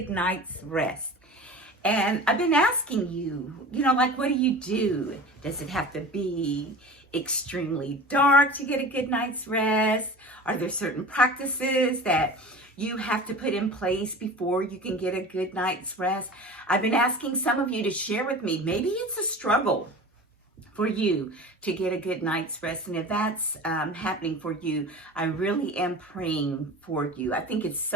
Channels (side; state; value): both; normal; correlation 0.36